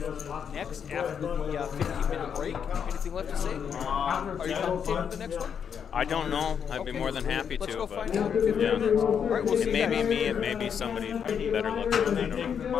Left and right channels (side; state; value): right; quieter; 7.5 dB